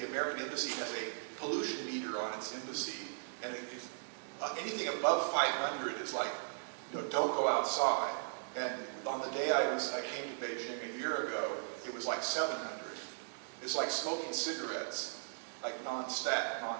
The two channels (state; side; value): silent; left; digital silence